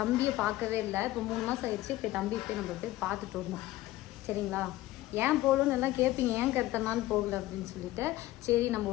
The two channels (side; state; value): right; quieter; 16.5 dB